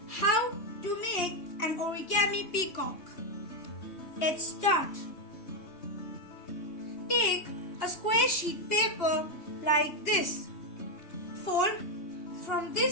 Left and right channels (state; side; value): late; right; 2.8 ms